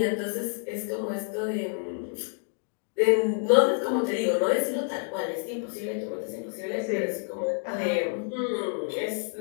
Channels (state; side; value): silent; right; 59 dB below the other